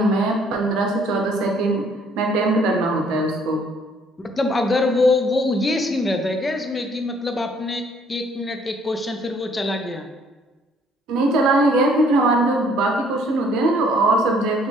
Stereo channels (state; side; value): normal; both; correlation 0.62